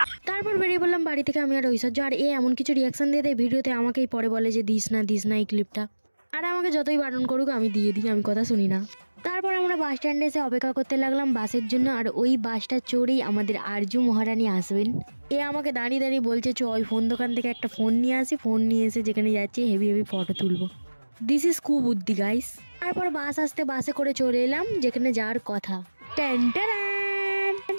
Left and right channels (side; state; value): both; inverted; correlation -1.00